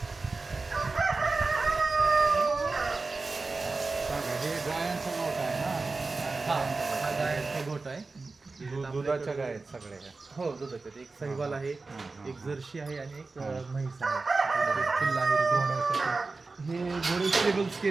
सांगा, हे गायांचा गोठ आहे ना? हा गायचा गोट आहे. दुधाच्या गाय आहेत सगळ्या. हो, दुधाचे एक साहिवाल आहे, हां. एक जर्सी आहे आणि एक म्हैस आहे. पिल्ला आहे घोड्यासाठी. हे घोडे स्टेबल्स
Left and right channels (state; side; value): quieter; left; 3.8 dB